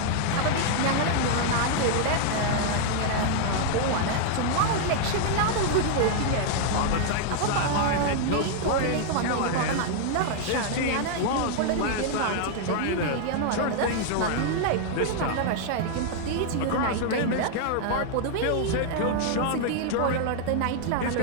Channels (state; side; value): different; both; correlation 0.00